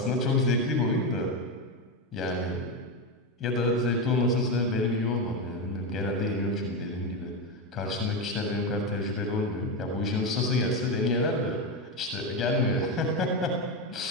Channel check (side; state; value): both; normal; correlation 0.12